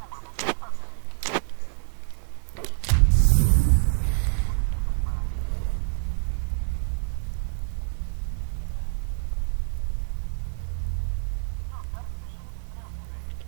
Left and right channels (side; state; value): left; silent; digital silence